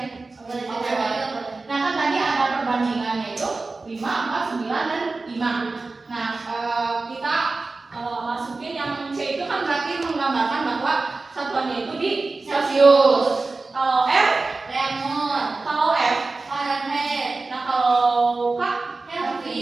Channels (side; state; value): left; quieter; 3.6 dB